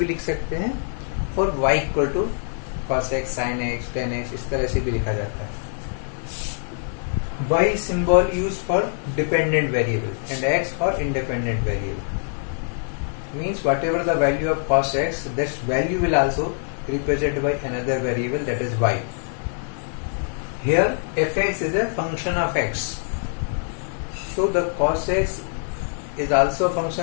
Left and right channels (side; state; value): right; silent; digital silence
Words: लिख सकते हैं और y equal to cos x, sin x, tan x इस तरह से भी लिखा जाता है। y symbol used for dependent variable and x for independent variable. Means whatever the value of cos x, this value will also represented by another variable, that is y. Here fx is a function of x. So the cos x is also a